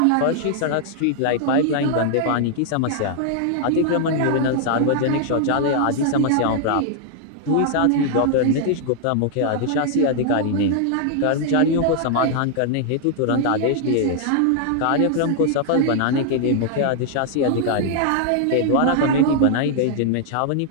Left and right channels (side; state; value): both; different; correlation 0.00